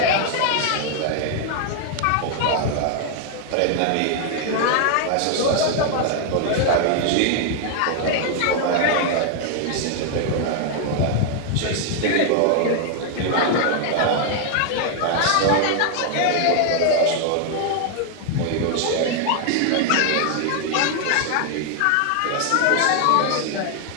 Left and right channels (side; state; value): both; different; correlation 0.00